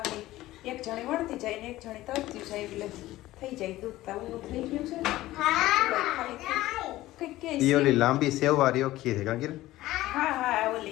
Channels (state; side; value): quieter; right; 16.4 dB